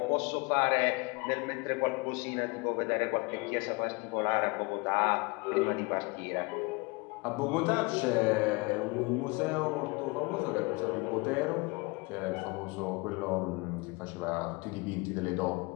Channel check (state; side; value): quieter; right; 27.6 dB